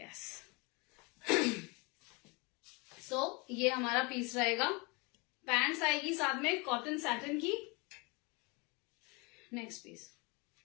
So ये हमारा पीस रहेगा. पैंट्स आएगी साथ में कॉटन सैटिन की. नेक्स्ट पीस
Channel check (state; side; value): quieter; right; 28.5 dB